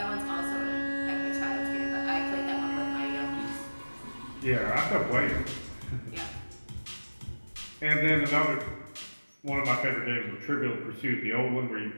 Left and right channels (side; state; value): both; inverted; correlation -1.00